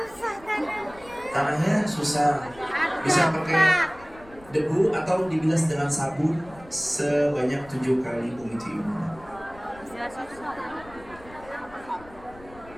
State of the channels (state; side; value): noise; left; rumble, 22 dB below the sound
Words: Tanahnya susah. Bisa pakai debu atau dibilas dengan sabun sebanyak 7 kali begitu Ibu.